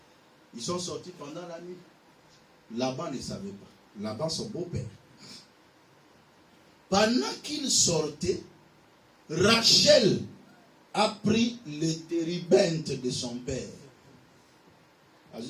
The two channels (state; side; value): identical; both; correlation 1.00